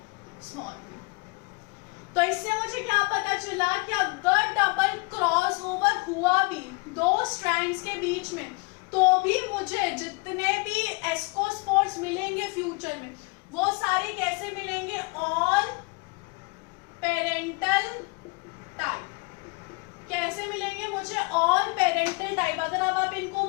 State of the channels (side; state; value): right; quieter; 29.4 dB